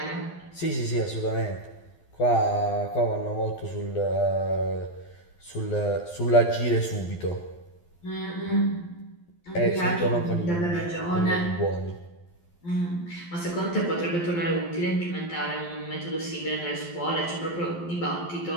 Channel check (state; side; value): late; right; 12 ms